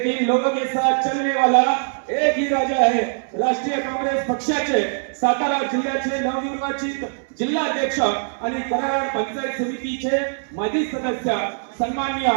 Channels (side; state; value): left; silent; 64 dB below the other